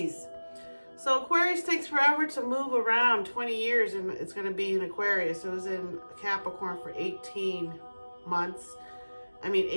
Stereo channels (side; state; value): both; inverted; correlation -1.00